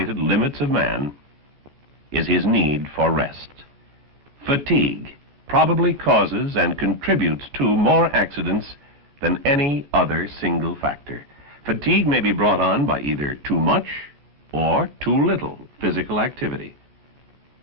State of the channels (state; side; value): late; left; 14 ms